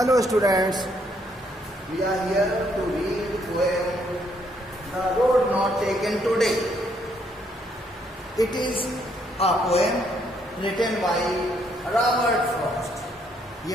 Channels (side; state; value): both; normal; correlation 0.71